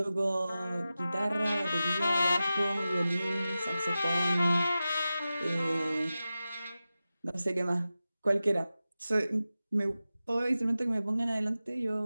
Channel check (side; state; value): both; inverted; correlation -0.94